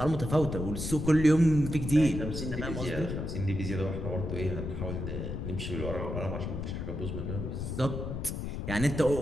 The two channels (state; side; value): noise; left; rumble, 4 dB below the sound